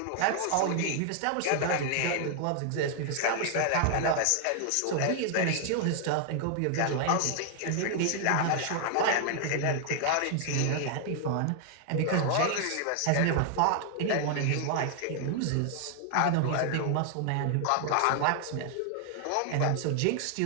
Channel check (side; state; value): both; different; correlation 0.00